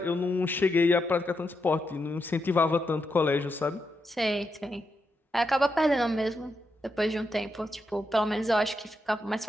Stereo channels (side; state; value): both; normal; correlation 0.84